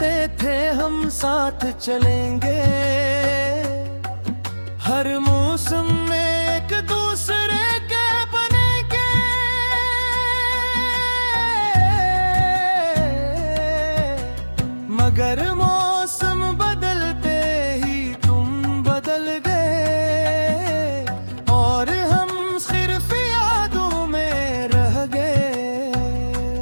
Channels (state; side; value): inverted; both; correlation -1.00